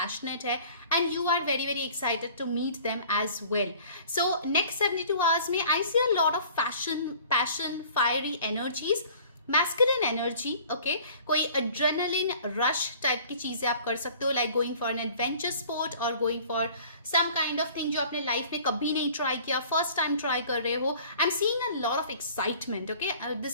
है and you are very very excited to meet them as well. So next 72 hours में I see a lot of passion, fiery energies, masculine energy. Okay, कोई एड्रेनलिन रश टाइप की चीजें आप कर सकते हो, like going for an adventure sport or going for some kind of thing जो आपने लाइफ में कभी नहीं ट्राई किया, फर्स्ट टाइम ट्राई कर रहे हो। I am seeing a lot of excitement. Okay,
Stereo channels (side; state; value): both; inverted; correlation -0.49